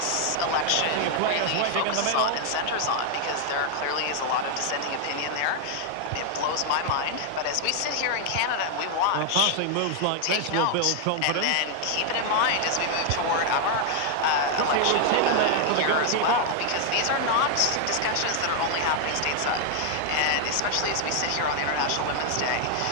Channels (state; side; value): different; both; correlation 0.00